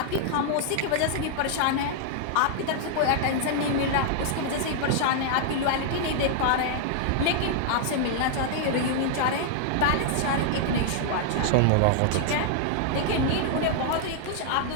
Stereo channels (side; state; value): both; different; correlation -0.01